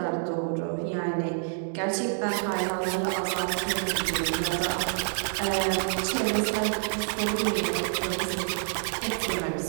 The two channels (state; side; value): silent; left; digital silence